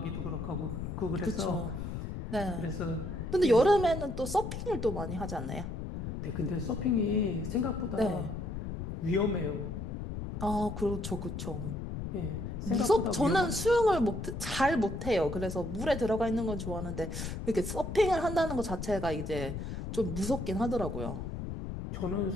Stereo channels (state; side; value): noise; left; rumble, 6 dB below the sound